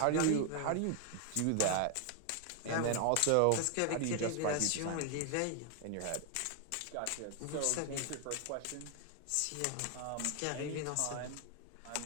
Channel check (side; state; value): both; different; correlation 0.00